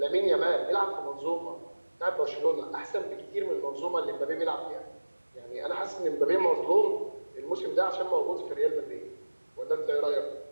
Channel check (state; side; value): inverted; both; correlation -1.00